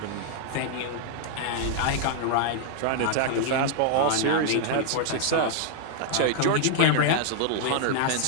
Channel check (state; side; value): different; both; correlation 0.00